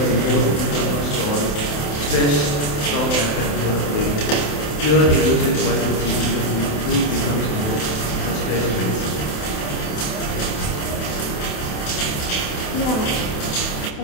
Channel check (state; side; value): late; right; 27 ms